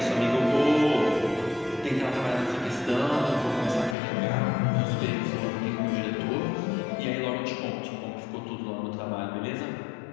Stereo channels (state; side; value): drops out; right; at 4.0 s